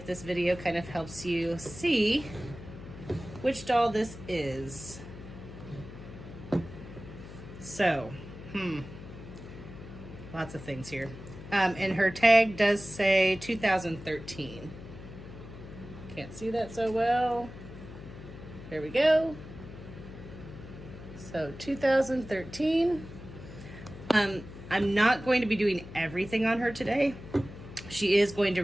this video kind of helps you see which doll this is. So, lots of things here. And her tag does say 2013. Can't see that so well. There we go. So 2013. I'm not going to be doing everything on her today. She is going to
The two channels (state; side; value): noise; left; hum, 14 dB below the sound